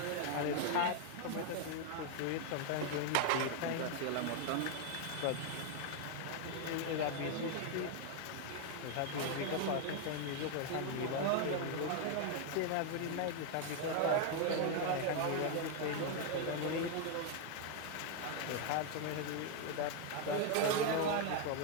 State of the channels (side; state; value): both; different; correlation 0.01